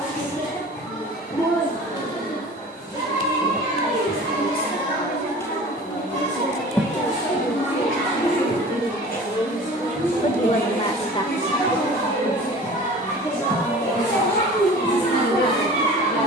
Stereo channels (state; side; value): normal; both; correlation 0.42